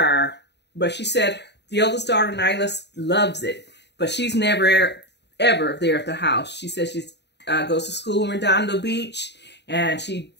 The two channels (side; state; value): right; late; 0.50 ms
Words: But she said the oldest daughter, Nyla, loves it. But she's never, ever there at the house. She says she goes to school in Redondo Beach. And she